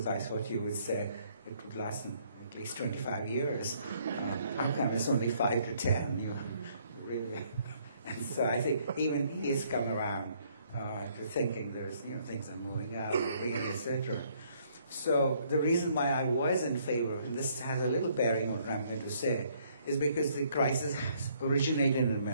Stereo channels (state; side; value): inverted; both; correlation -0.66